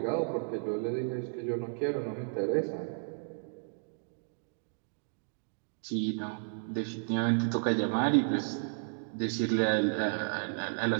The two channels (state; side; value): silent; left; digital silence